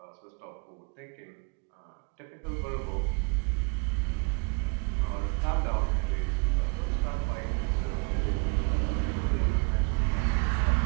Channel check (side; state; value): left; quieter; 32.2 dB